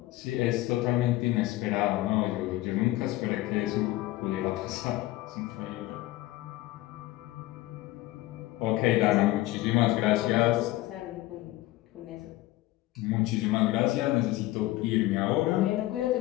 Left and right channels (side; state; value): right; quieter; 17.3 dB